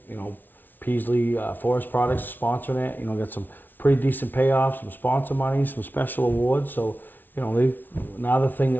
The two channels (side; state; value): right; late; 0.088 ms